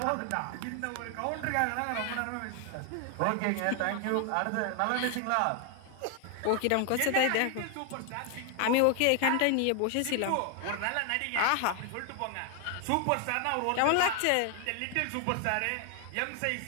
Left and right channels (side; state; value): both; different; correlation 0.00